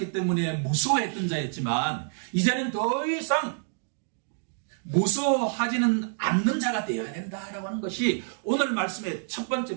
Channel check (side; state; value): left; silent; digital silence